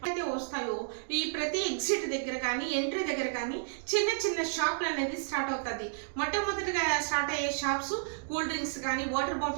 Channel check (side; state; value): left; silent; digital silence